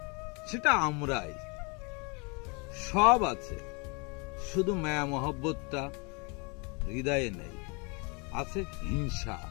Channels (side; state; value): right; quieter; 31.7 dB